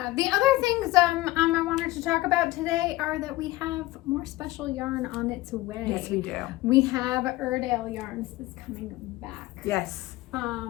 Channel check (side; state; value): right; quieter; 18.4 dB